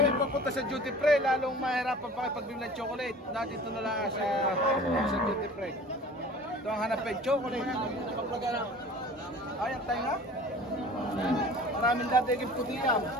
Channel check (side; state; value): both; normal; correlation 0.43